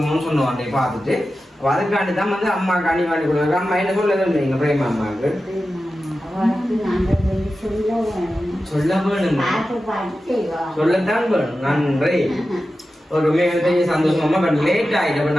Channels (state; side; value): normal; both; correlation 0.93